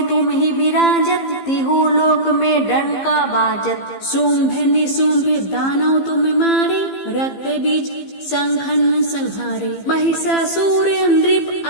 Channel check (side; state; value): right; late; 15 ms